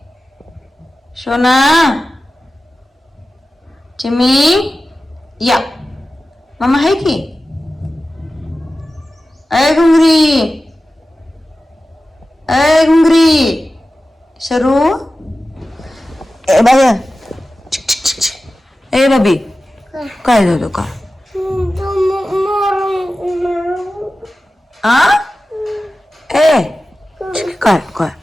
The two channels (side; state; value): both; normal; correlation 0.95